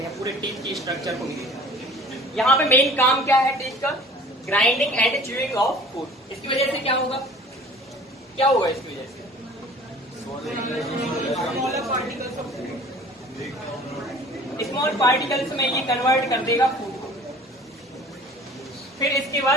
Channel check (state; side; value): normal; both; correlation 0.47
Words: हैं पूरे टीथ की स्ट्रक्चर को मिलेगा। यहाँ पे मेन काम क्या है टीथ का? Grinding and chewing of food. इसकी वजह से क्या होगा? क्या होगा इसकी वजह से? पार्टिकल्स में ये कन्वर्ट कर देगा फूड को। फिर इसके